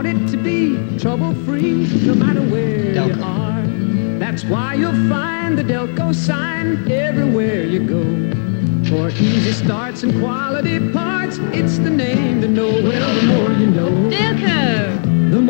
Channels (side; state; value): right; silent; digital silence